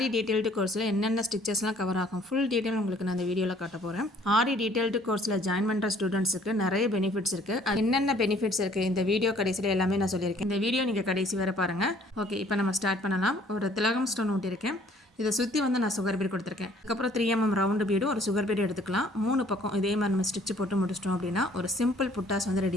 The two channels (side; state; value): both; normal; correlation 0.58